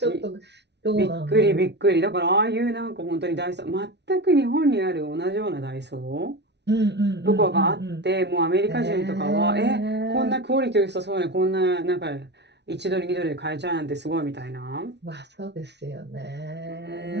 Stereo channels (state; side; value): late; left; 0.50 ms